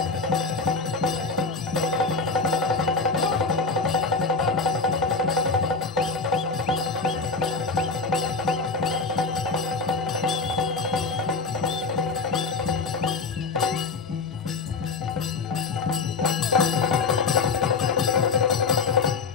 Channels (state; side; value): quieter; right; 4.3 dB